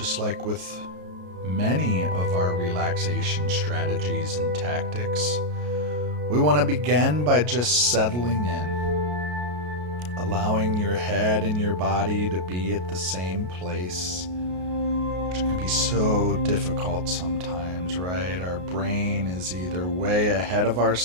like with many of our relaxation strategies and tactics, we want to begin by just settling in. Allowing your head and your body to be at the same place, which can be so difficult sometimes, right? Our brain is either way ahead of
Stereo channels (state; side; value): late; left; 33 ms